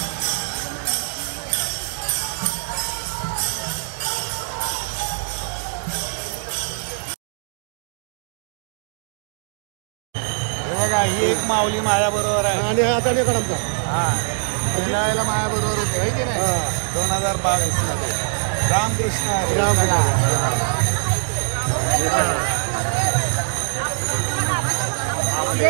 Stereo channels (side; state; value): left; silent; digital silence